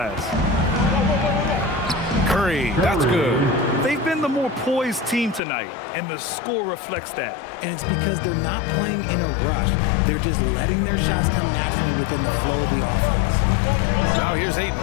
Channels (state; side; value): drops out; right; at 5.4 s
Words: Curry Curry. That's good. They've been the more poised team tonight, and the score reflects that. And it's because they're not playing in a rush. They're just letting their shots come naturally within the flow of the offense. Now here's Ayton.